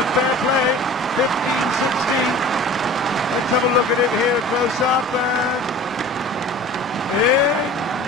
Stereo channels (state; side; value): normal; both; correlation 0.42